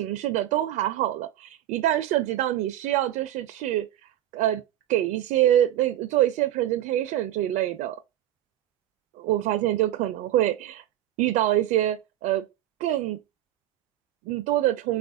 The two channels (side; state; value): left; quieter; 12.9 dB